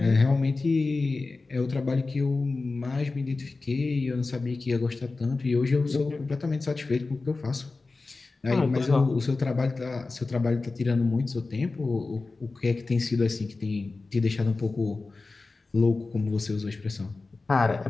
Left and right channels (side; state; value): right; quieter; 3.7 dB